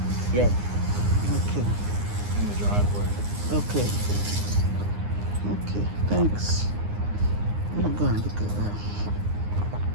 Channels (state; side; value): late; left; 9.7 ms